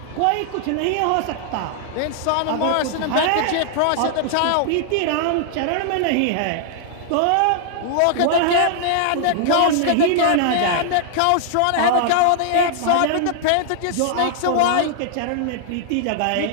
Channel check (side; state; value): both; different; correlation -0.01